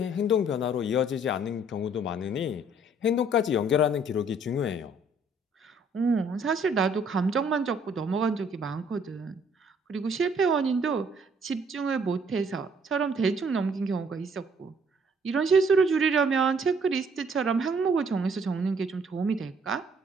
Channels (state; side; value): normal; both; correlation 0.62